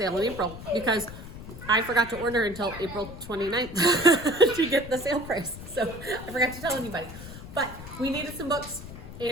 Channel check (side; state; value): left; noise; rumble, 13 dB below the sound